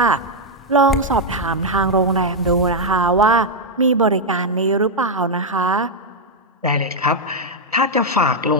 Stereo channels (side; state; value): both; normal; correlation 0.00